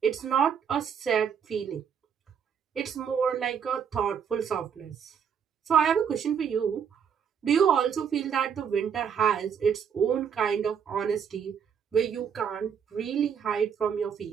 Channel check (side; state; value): left; quieter; 7.5 dB